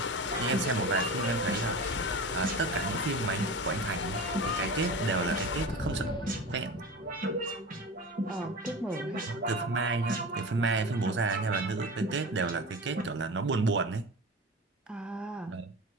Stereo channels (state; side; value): normal; both; correlation 0.30